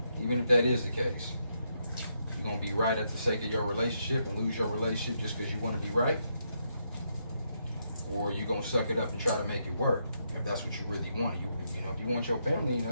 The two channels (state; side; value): inverted; both; correlation -0.79